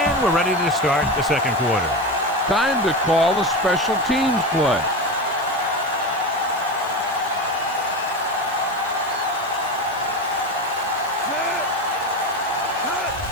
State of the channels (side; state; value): right; noise; hiss, 23 dB below the sound